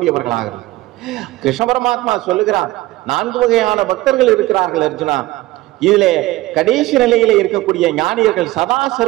கிருஷ்ண பரமாத்மா சொல்லுகிறார், 4 வகையான பக்தர்கள் இருக்கிறார்கள் அர்ஜுனா. இதிலே கடைசி நிலையில இருக்கக்கூடிய ஞானியர்கள் சதா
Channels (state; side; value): quieter; left; 18.2 dB